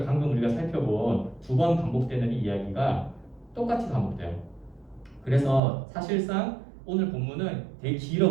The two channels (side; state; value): left; drops out; at 5.6 s